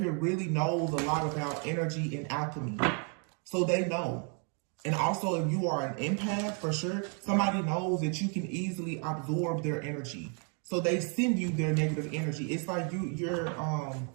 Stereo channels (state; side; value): quieter; left; 39.9 dB